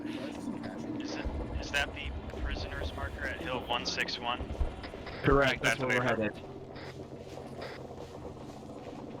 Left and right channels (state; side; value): identical; both; correlation 1.00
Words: Is that the prisoners marker at Hill 161? Correct, that's where we're headed.